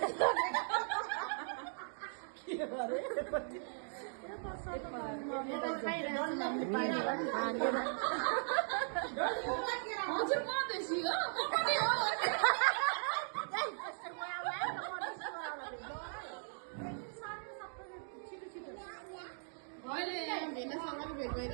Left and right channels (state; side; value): silent; left; digital silence